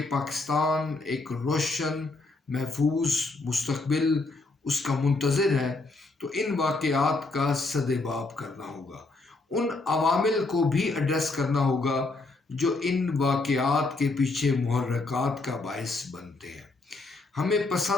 پاکستان ایک روشن محفوظ مستقبل اس کا منتظر ہے، تو ان واقعات کا سدباب کرنا ہوگا، ان عوامل کو بھی ایڈریس کرنا ہوگا جو ان واقعات کے پیچھے محرکات کا باعث بنتے ہیں۔ ہمیں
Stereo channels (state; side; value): quieter; right; 3.4 dB